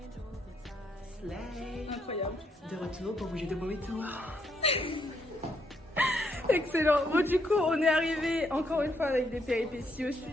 Slay. Incroyable. De retour pour vous jouer de mauvais tours. Excellent. Bon, du coup, on est arrivé encore une fois avec des péripéties au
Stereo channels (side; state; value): both; normal; correlation 0.74